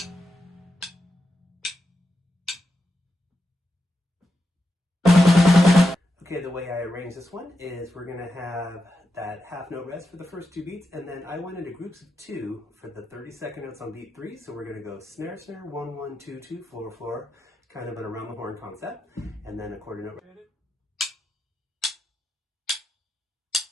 Okay, the way I arrange this one is we're going to have that half note rest for the first 2 beats, and then I went into groups of 2 for the 30-second notes on beat 3. So we're going to go snare, snare, 1, 1, 2, 2, floor, floor, kind of an around the horn concept, and then a quarter note.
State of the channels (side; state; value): both; normal; correlation 0.87